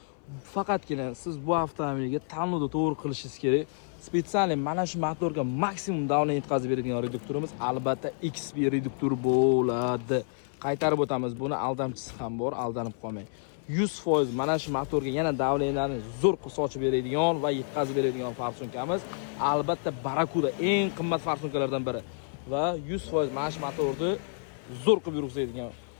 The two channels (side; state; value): right; silent; 58 dB below the other